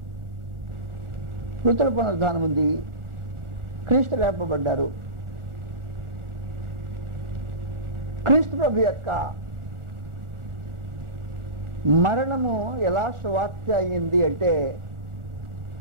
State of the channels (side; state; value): left; late; 1.4 ms